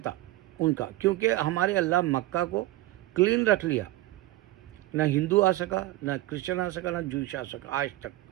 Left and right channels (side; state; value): left; quieter; 17.0 dB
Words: ان کا، کیونکہ ہمارے اللہ مکہ کو کلین رکھ لیا، نہ ہندو آ سکا، نہ کرسچن آ سکا، نہ جوئش آ سکا، آج تک